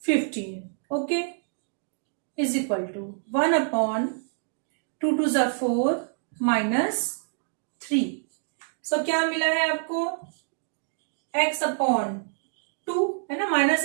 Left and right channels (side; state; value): left; silent; digital silence